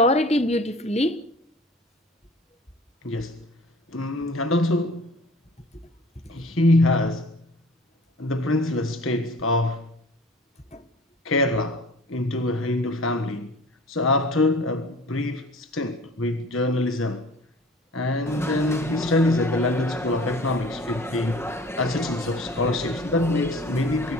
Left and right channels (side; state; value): both; normal; correlation 0.45